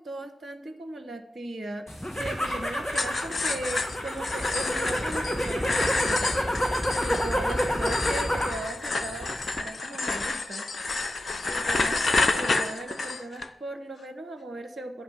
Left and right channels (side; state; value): both; normal; correlation 0.91